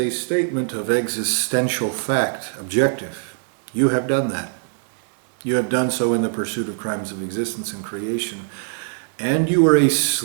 statement of existential fact, objective. You have done that. You have done so in the pursuit of crimes of existence and creation. And you are a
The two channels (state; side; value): silent; left; digital silence